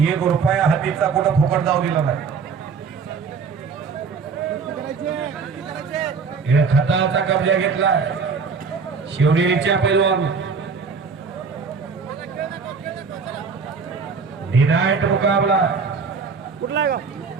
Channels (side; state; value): left; quieter; 5.3 dB